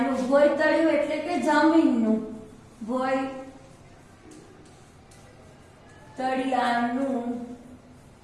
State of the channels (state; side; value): identical; both; correlation 1.00